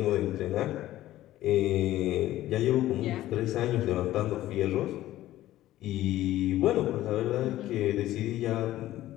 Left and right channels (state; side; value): quieter; right; 14.7 dB